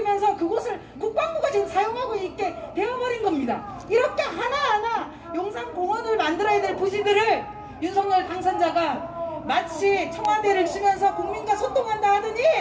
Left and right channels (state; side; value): identical; both; correlation 1.00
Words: 그곳을 국방부가 지금 사용하고 있게 되어버린 겁니다. 이렇게 하나하나 용산공원을 만들어야 될 부지들을 윤석열 당선자가 마치 청와대를 주면서 국민과 소통한다 하더니